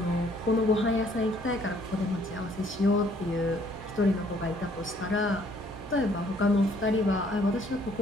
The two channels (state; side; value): normal; both; correlation 0.63